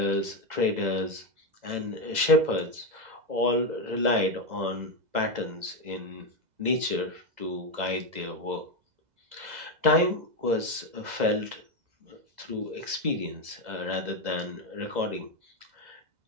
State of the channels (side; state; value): left; late; 2.0 ms